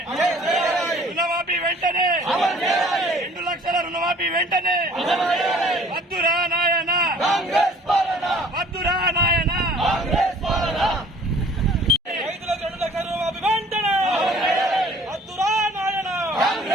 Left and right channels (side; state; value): both; normal; correlation 0.53